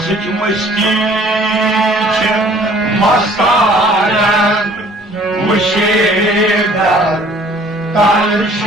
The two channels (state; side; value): normal; both; correlation 0.55